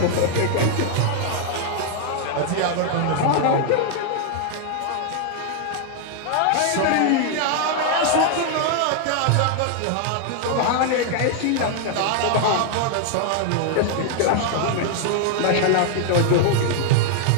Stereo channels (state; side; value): different; both; correlation 0.00